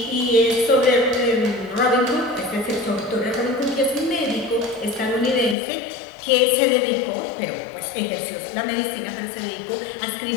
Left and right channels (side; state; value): right; drops out; at 5.6 s